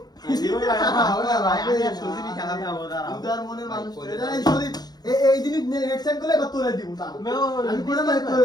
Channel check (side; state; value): right; late; 0.19 ms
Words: জীবন ভাই, হবে না ভাই, আমি আর সুজিবি খেলা খাবো, দাঁড়াও। উদার মনের মানুষ ভাই, এটা এই সদীপ এই জিনিস নেক্সট টাইম করলে এবার তোরে দিব না আমি করে মানে